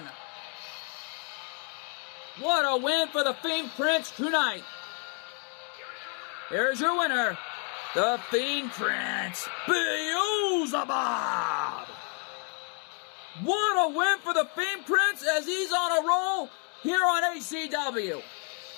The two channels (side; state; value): right; quieter; 40.0 dB